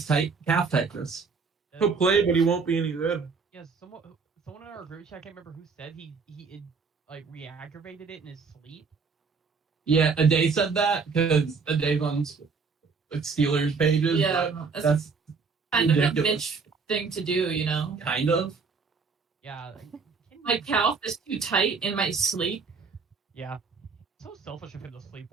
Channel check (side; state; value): left; quieter; 5.1 dB